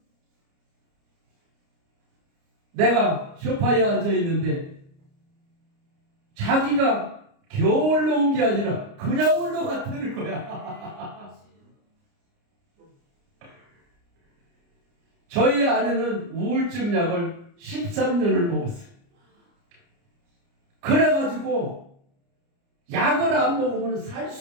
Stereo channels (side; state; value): left; late; 29 ms